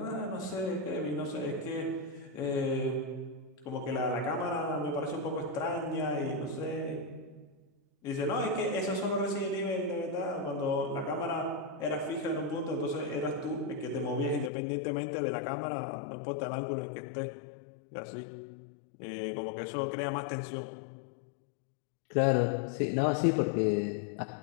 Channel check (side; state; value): right; drops out; at 14.5 s